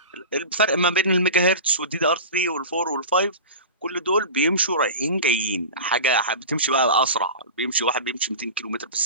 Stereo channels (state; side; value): inverted; both; correlation -0.31